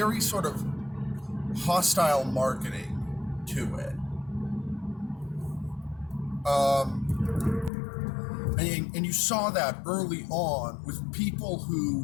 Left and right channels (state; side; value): drops out; right; at 7.7 s